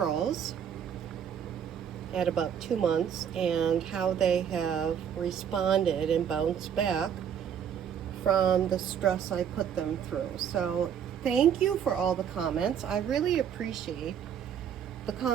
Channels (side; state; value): left; quieter; 8.4 dB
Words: at about 2 months and how they have responded and bounced back from the stress I put them through. So thank you for all the comments. I really appreciate the